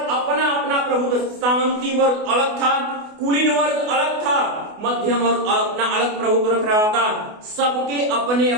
अपना अपना प्रभुत्व, सामंती वर्ग अलग था, कुलीन वर्ग अलग था, मध्यम वर्ग अपना अलग प्रभुत्व रख रहा था। सबके अपने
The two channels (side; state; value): left; late; 28 ms